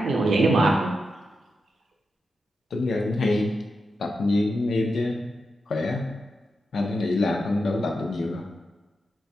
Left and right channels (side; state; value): both; normal; correlation 0.87